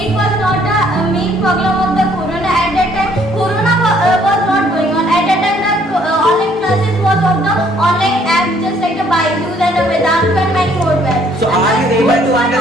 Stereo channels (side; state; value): both; normal; correlation 0.63